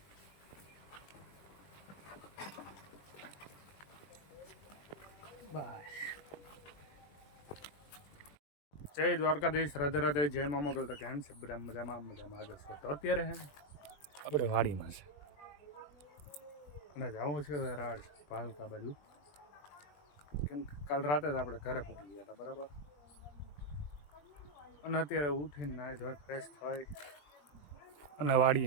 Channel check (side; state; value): right; late; 20 ms